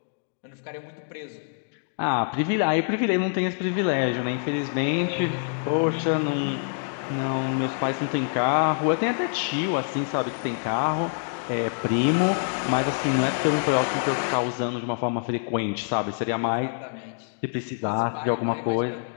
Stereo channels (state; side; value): silent; right; digital silence